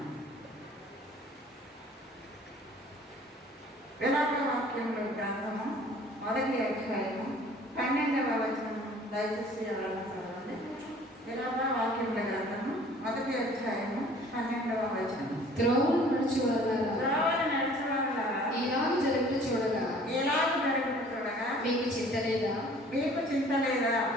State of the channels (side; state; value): both; normal; correlation 0.52